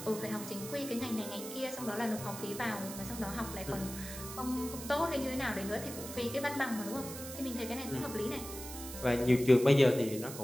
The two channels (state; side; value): noise; right; hiss, 10 dB below the sound